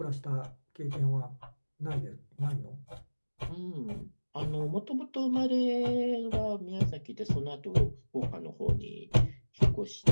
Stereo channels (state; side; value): inverted; both; correlation -1.00